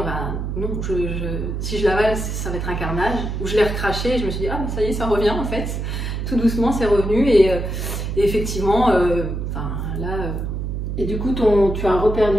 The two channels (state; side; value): noise; right; hum, 3 dB below the sound